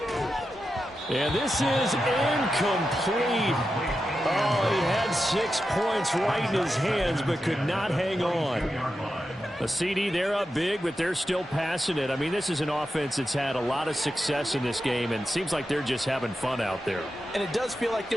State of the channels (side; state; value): both; normal; correlation 0.89